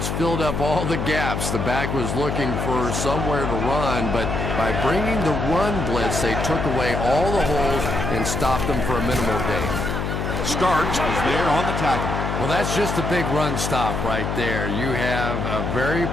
filled up all the gaps. The back was looking for somewhere to run, but by bringing the run blitz, they took away all the holes and stopped them for a minimal gain. Starks was there on the tackle. Well, that's just a big run stop right there. You have a very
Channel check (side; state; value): left; noise; hum, 2 dB below the sound